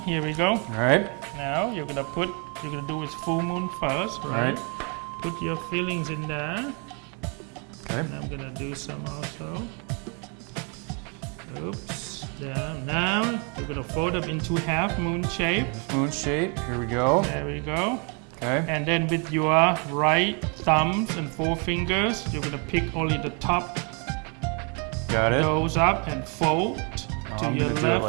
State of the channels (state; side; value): quieter; left; 36.1 dB